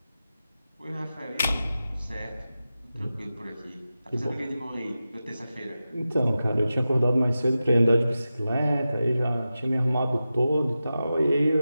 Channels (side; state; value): both; inverted; correlation -0.93